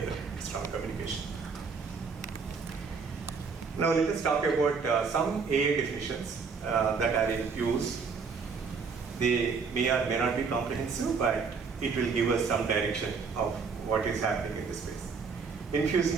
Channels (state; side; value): quieter; left; 5.2 dB